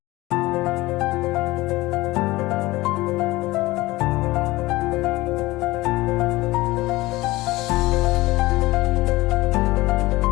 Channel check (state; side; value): quieter; right; 19.5 dB